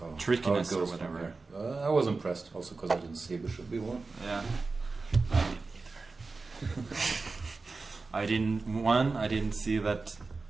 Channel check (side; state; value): left; quieter; 3.9 dB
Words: trickiness how it goes or whatever. from here. I was impressed also because I didn't see bishop b1. Yeah. I didn't either. I didn't see that